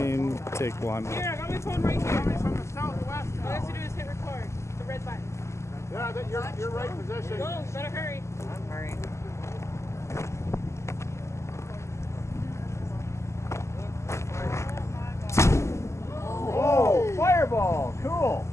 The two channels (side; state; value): right; late; 0.13 ms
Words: take one. Here, I got my phone right here. From the southwest. All I have to do is hit record. The red button. Yeah, you're right position. Go, better hurry. I'm hurrying. Oh, fireball. Cool.